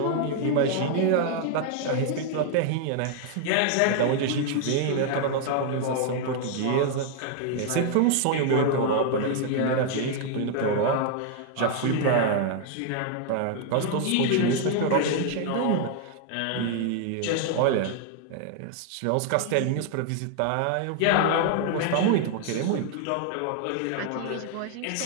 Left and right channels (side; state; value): both; different; correlation 0.00